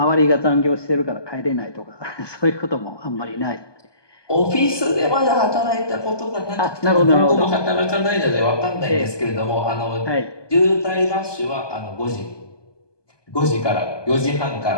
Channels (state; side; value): late; right; 1.2 ms